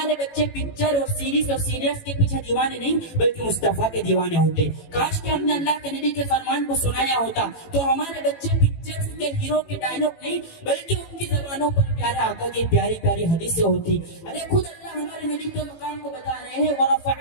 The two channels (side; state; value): right; late; 18 ms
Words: بچے پکچر اور سیریز اور سیریلز کے پیچھے دیوانے نہیں بلکہ مصطفیٰ کے دیوانے ہوتے. کاش کہ ہم نے اللہ کے نبی کے فرمان کو سنایا ہوتا تو ہمارے بچے پکچر کے ہیرو کے ڈائلوگ نہیں بلکہ ان کی زبانوں پر پیارے آقا کی پیاری پیاری حدیثیں ہوتی. ارے خود اللہ ہمارے نبی کے مقام کو بتا رہے ہیں